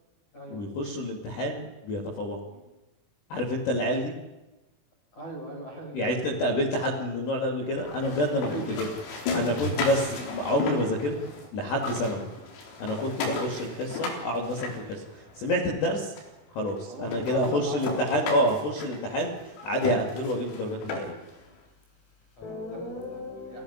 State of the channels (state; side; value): late; right; 18 ms